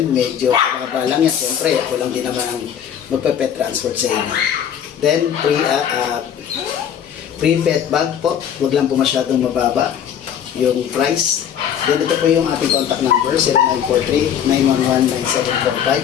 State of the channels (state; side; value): quieter; right; 8.9 dB